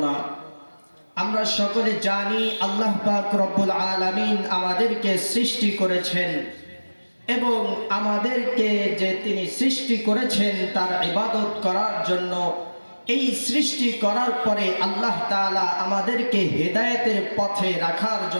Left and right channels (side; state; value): both; inverted; correlation -1.00